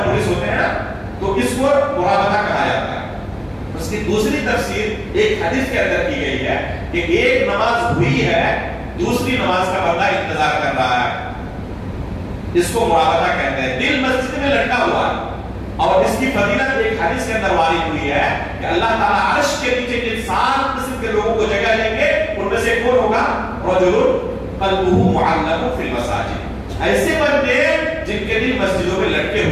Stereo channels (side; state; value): both; identical; correlation 1.00